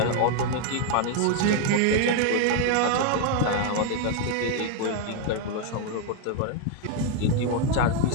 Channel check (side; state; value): both; different; correlation 0.01